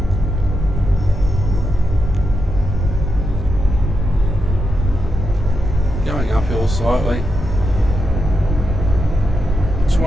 Going uphill slightly.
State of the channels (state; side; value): normal; both; correlation 0.85